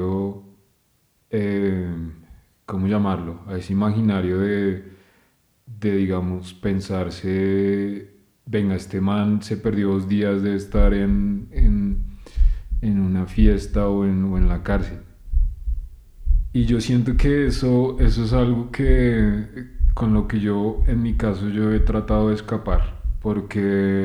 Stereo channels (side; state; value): both; identical; correlation 1.00